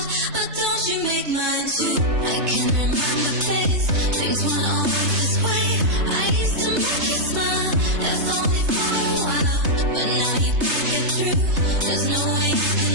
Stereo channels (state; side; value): late; left; 3.3 ms